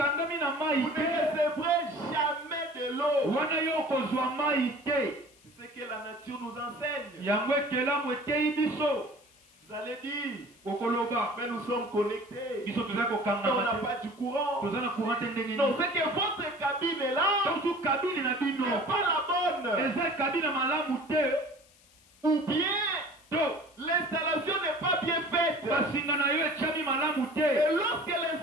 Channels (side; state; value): left; noise; hiss, 29 dB below the sound